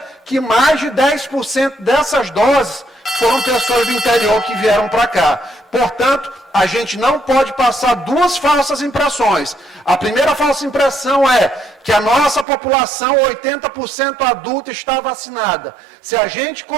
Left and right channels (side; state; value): left; drops out; at 12.5 s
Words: que mais de 10% dessas doses foram pessoas do interior que vieram para cá. Portanto, a gente não pode passar duas falsas impressões. A primeira falsa impressão é que a nossa população, 80% adulta, está vacinada. Se a gente